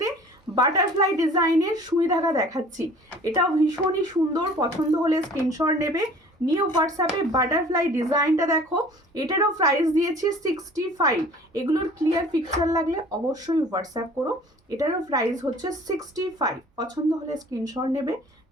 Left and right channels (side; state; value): both; normal; correlation 0.48